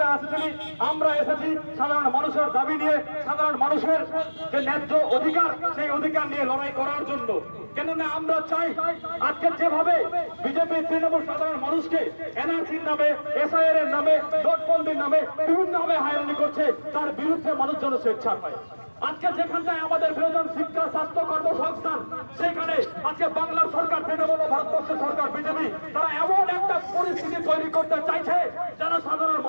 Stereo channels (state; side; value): inverted; both; correlation -1.00